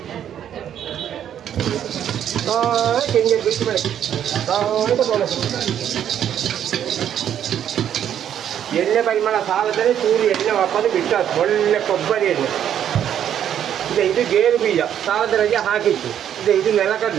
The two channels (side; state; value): left; quieter; 9.8 dB